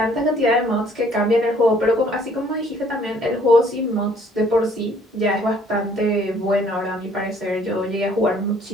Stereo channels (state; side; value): normal; both; correlation 0.60